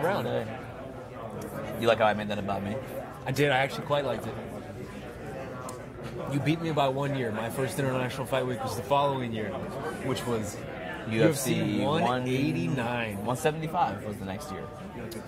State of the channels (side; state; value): both; identical; correlation 1.00